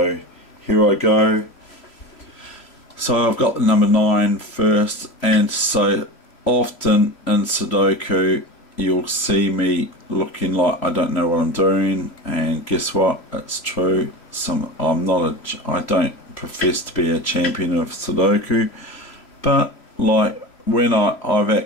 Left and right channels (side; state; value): right; late; 3.0 ms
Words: here I go. So I've got the number 9 first, and so often in Sudoku you'll see me looking like I don't know what I'm doing, and guess what, it's true. I don't profess to be a champion of Sudoku, but like when I've